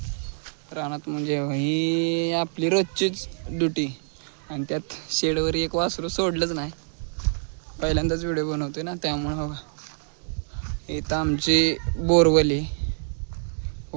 रानात म्हणजे ही आपली रोजचीच ड्युटी. आणि त्यात शेडवर एक वासरू सोडलंच नाही. पहिल्यांदाच व्हिडिओ बनवतोय ना त्यामुळं. बघा इथं आमची बोरवली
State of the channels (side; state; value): left; silent; 61 dB below the other